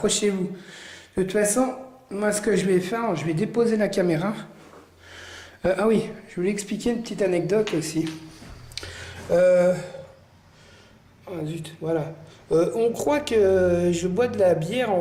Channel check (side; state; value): both; identical; correlation 1.00